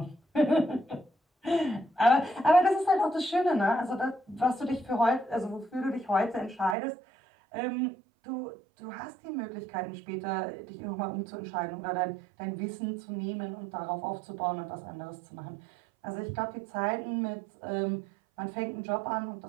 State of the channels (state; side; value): drops out; left; at 6.8 s